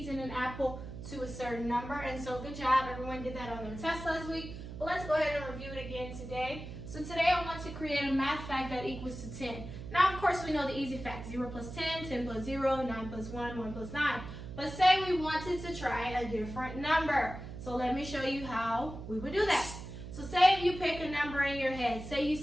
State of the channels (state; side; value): noise; right; hum, 10 dB below the sound